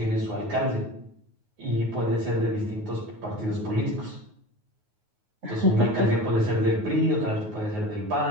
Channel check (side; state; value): left; late; 9.4 ms